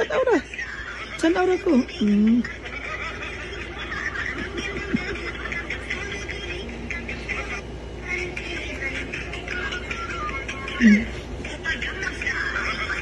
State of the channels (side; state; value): both; identical; correlation 1.00